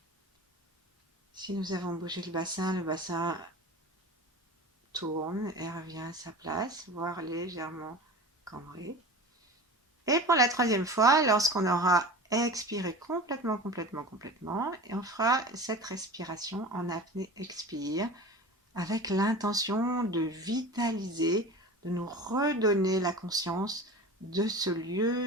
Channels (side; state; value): both; normal; correlation 0.35